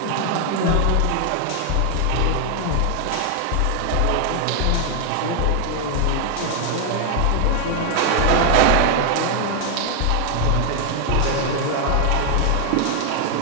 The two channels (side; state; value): both; different; correlation 0.00